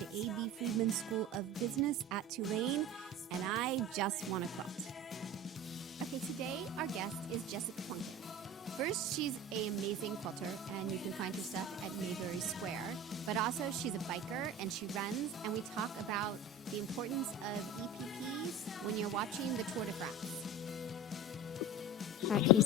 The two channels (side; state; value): both; normal; correlation 0.33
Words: A.B. Friedman School of Business at Tulane, and I just want to quilt. Okay, today our guest is Jessica Plunkett. First, she's an amazing quilter, and you can find her stuff at Mayberry Square. But also, she's a biker, and she runs, and we talk about the importance of EPPs when you're watching the Tour de France. All right, can you